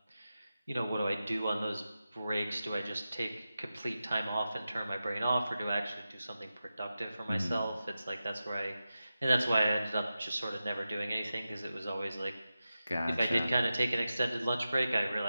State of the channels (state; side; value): inverted; both; correlation -0.92